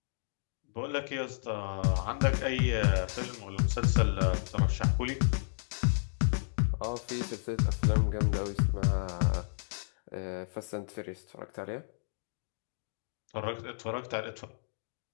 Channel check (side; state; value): right; silent; digital silence